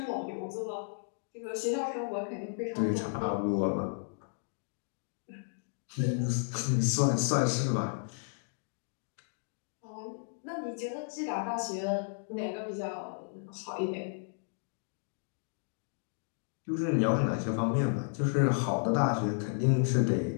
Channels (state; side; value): silent; right; digital silence